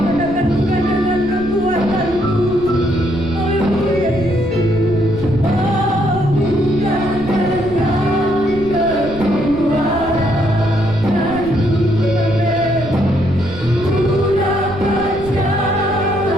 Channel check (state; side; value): noise; right; rumble, 14 dB below the sound